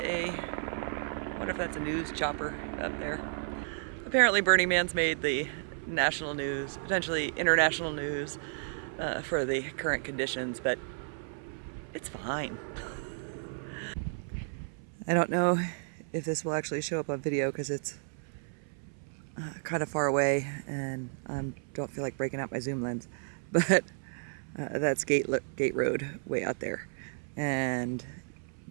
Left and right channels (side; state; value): left; silent; 56 dB below the other